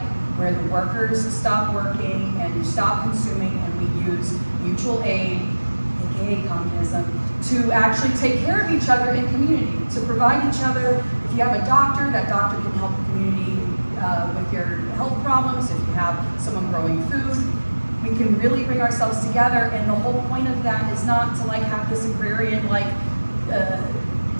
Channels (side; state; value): both; inverted; correlation -1.00